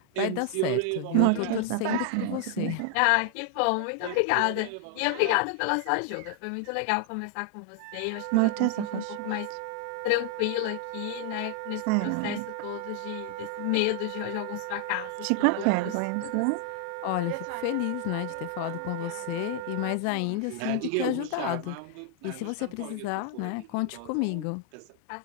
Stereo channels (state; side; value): different; both; correlation 0.00